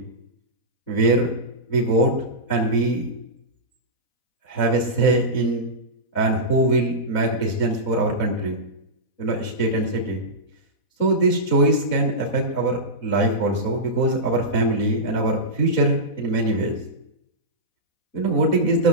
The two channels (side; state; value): right; late; 4.1 ms